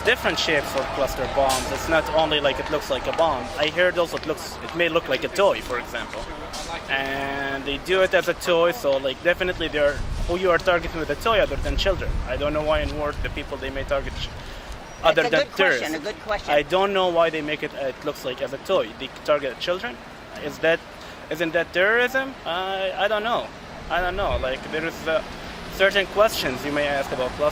different shapes of cluster bombs. It's not only like it looks like a bomb. I heard also it may look like a toy, for example. And they do it as a toy, so like definitely who you are targeting with a toy other than children. I don't know why in war the people they may target other than terrorists. A good question. I don't know why they make it looks like as a toy. They target children. Isn't that terrorism? I don't know. Like there is certain questions you may ask about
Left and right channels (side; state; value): both; identical; correlation 1.00